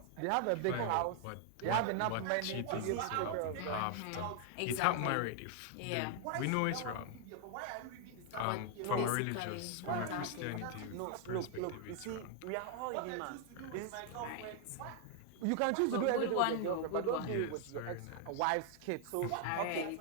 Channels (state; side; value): different; both; correlation 0.00